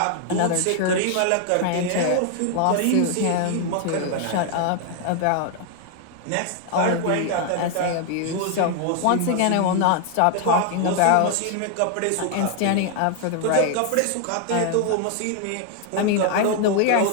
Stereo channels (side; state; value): both; different; correlation 0.00